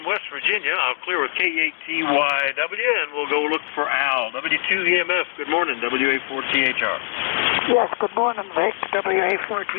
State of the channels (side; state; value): right; silent; digital silence